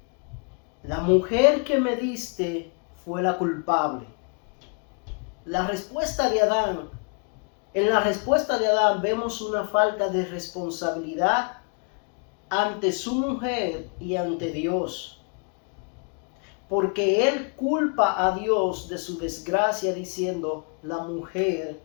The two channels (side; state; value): right; quieter; 37.3 dB